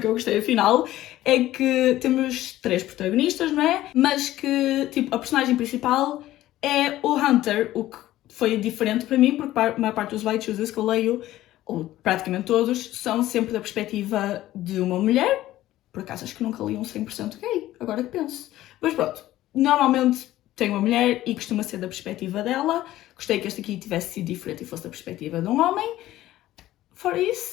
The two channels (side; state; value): right; quieter; 14.8 dB